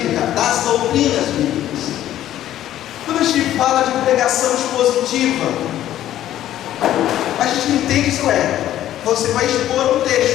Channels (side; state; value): right; quieter; 12.6 dB